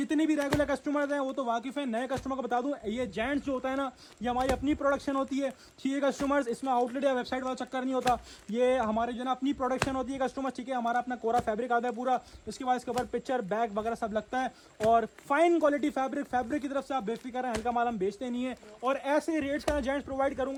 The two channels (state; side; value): identical; both; correlation 1.00